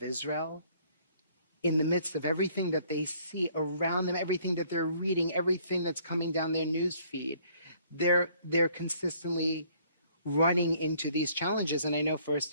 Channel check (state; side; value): inverted; both; correlation -0.61